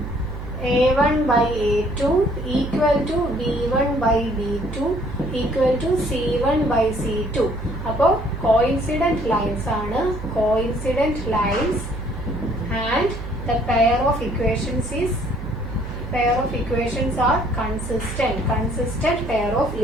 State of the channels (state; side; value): noise; right; hum, 8 dB below the sound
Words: A1/A2 equal to B1/B2 equal to C1/C2. അപ്പോൾ കോയിൻസിഡന്റ് ലൈൻസ് ആണ്. Coincident lines and the pair of equations are consistent pair of